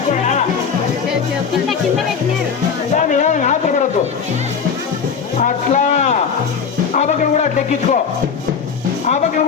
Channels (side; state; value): right; quieter; 6.3 dB